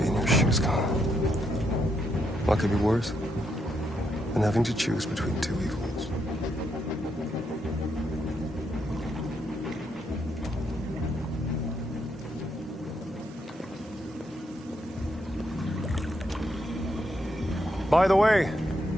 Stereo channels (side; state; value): both; normal; correlation 0.78